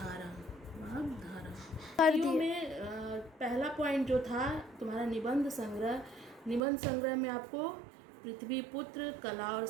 में पहला पॉइंट जो था तुम्हारा निबंध संग्रह में आपको पृथ्वीपुत्र, कला और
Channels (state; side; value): drops out; left; at 6.7 s